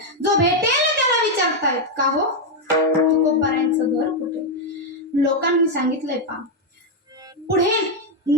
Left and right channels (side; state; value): both; normal; correlation 0.02